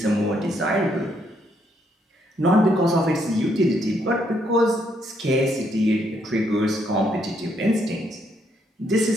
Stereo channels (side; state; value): both; normal; correlation 0.73